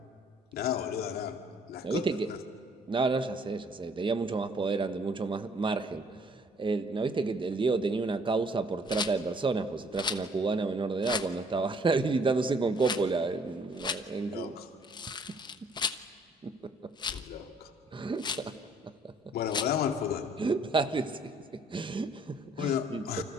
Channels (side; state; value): both; normal; correlation 0.61